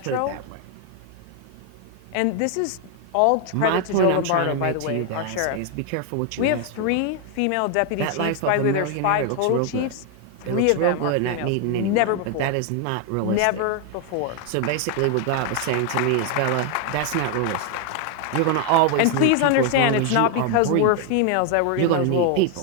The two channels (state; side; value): different; both; correlation 0.01